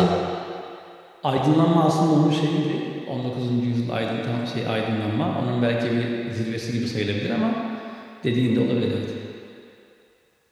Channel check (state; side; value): identical; both; correlation 1.00